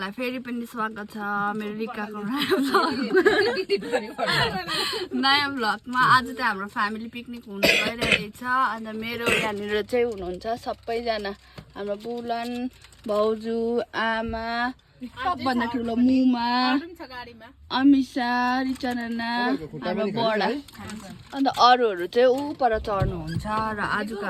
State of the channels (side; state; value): both; identical; correlation 1.00